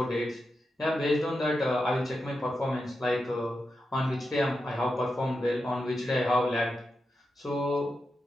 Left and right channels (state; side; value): normal; both; correlation 0.88